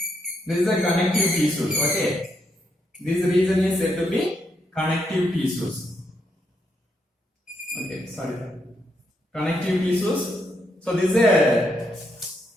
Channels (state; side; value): normal; both; correlation 0.79